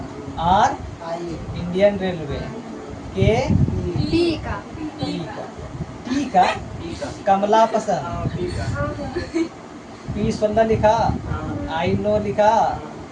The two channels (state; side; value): identical; both; correlation 1.00